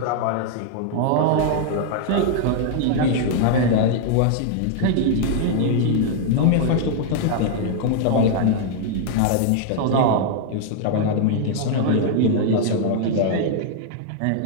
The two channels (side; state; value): both; different; correlation -0.01